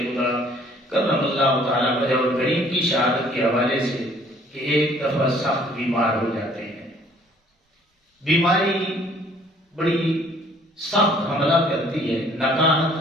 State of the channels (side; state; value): both; normal; correlation 0.58